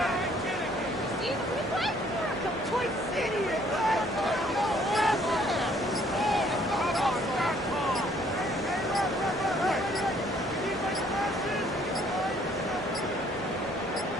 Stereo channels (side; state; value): both; normal; correlation 0.62